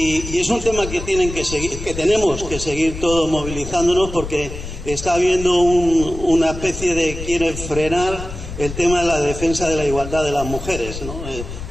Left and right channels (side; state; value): left; noise; rumble, 9 dB below the sound